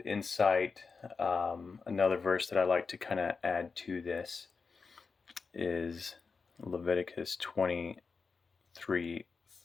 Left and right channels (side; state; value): right; quieter; 4.8 dB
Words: insight. Another verse that I like to kind of add to this is Leviticus